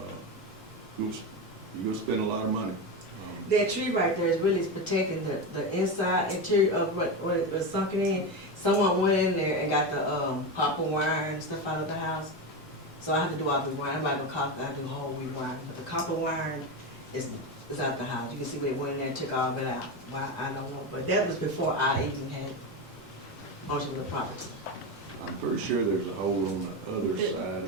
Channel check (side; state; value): both; normal; correlation 0.17